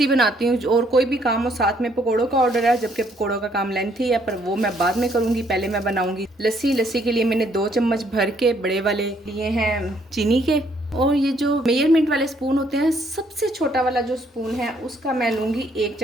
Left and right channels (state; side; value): normal; both; correlation 0.68